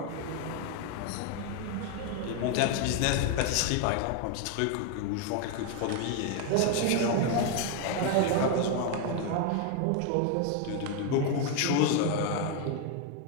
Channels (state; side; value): different; both; correlation 0.01